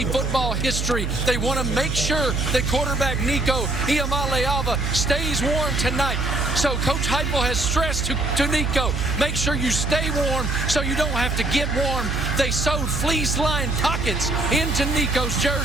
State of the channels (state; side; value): noise; right; hum, 2 dB below the sound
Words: football history. They want to make sure that quarterback Nico Iamaleava stays warm tonight. So Coach Heupel has stressed to Nico, make sure you stay warm so you don't have to get warm. They sewed fleece-lined pockets into Nico's